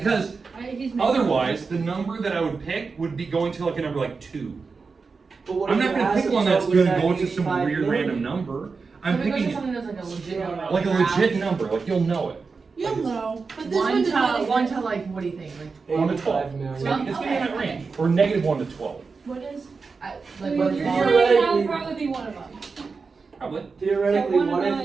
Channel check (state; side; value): quieter; left; 4.7 dB